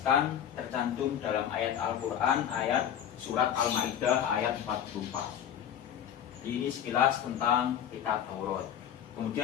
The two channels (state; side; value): quieter; right; 9.7 dB